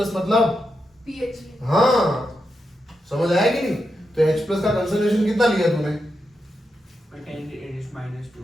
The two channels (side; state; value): both; normal; correlation 0.86